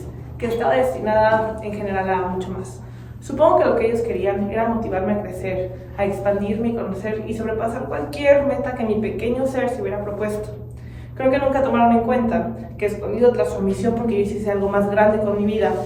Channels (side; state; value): both; identical; correlation 1.00